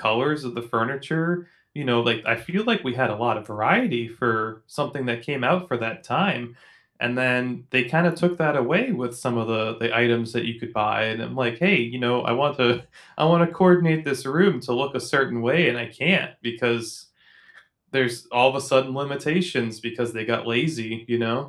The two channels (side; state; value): both; identical; correlation 1.00